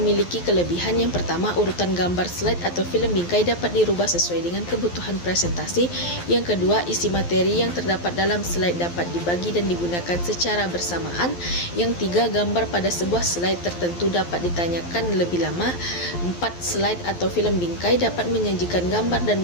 kelebihan. Yang pertama, urutan gambar slide atau film bingkai dapat dirubah sesuai dengan kebutuhan presentasi. Yang kedua, isi materi yang terdapat dalam slide dapat dibagi dan digunakan secara bersamaan. Yang tiga, gambar pada sebuah slide tertentu dapat ditanyakan lebih lama. 4, slide atau film bingkai dapat menyajikan gambar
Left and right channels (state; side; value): late; right; 12 ms